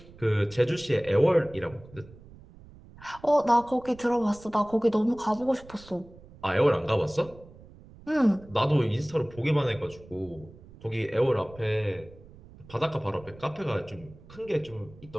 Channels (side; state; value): right; noise; rumble, 21 dB below the sound